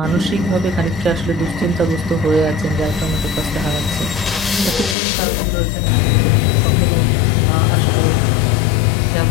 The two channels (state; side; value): drops out; right; at 5.0 s